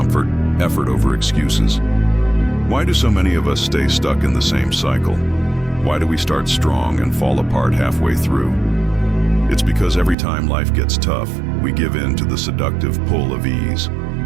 effort over excuses. Why do so many of us stay stuck in the same cycle? Why do we start strong and fall apart halfway through? It's because every time life gets tough, we give in to the seductive pull of ease.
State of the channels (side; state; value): left; drops out; at 10.2 s